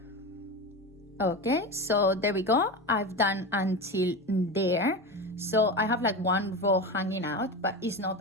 Okay, so there we go. I've done until there. So I have like 1 row hanging out, but it's not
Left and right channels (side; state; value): both; normal; correlation 0.22